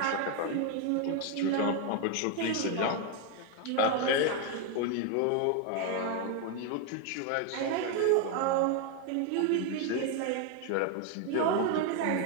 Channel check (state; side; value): different; both; correlation 0.01